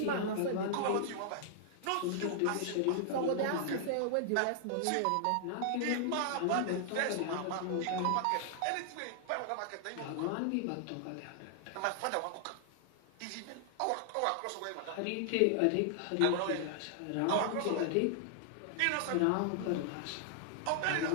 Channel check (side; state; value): both; different; correlation -0.01